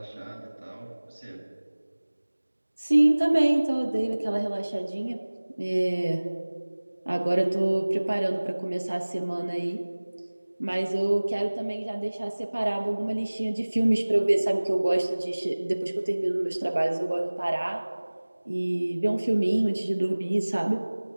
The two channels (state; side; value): inverted; both; correlation -1.00